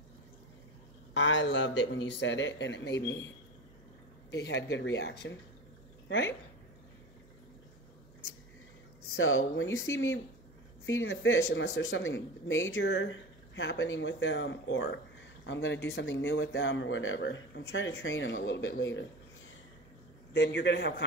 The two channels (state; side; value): normal; both; correlation 0.30